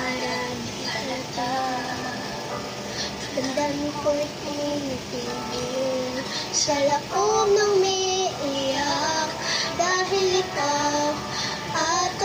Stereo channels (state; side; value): identical; both; correlation 1.00